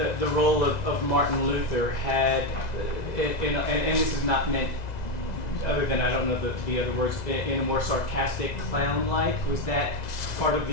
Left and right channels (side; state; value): right; late; 2.0 ms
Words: role of Martin Luther had, and this is not meant, other than I don't know the other words, in a more sarcastic, clown-like. Was that part of